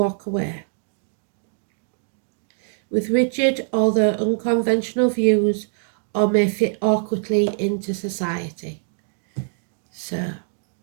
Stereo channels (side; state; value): left; silent; digital silence